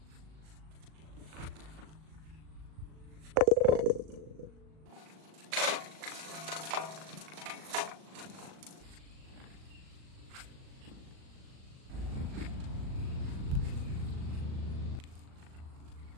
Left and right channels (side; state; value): left; late; 38 ms